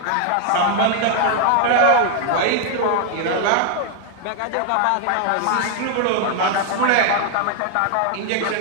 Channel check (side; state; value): both; different; correlation 0.00